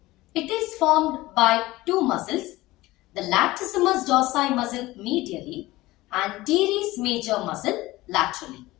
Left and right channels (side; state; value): right; quieter; 18.6 dB